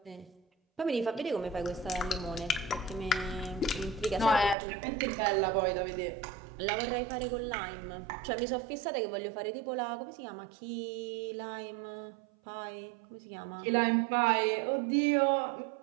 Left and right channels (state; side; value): drops out; left; at 4.5 s